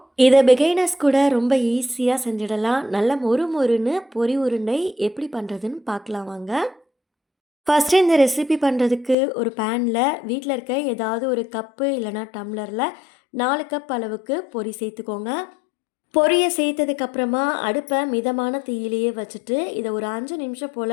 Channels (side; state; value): right; drops out; at 9.2 s